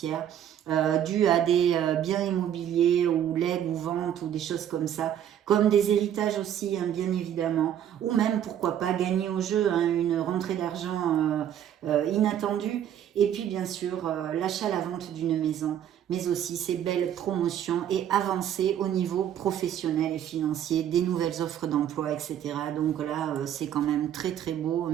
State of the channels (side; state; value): left; quieter; 10.2 dB